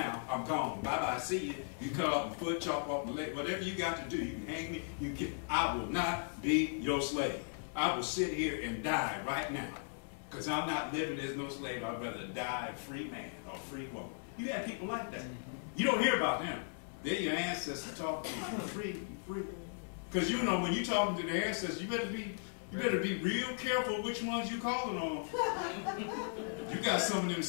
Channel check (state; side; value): silent; right; 53 dB below the other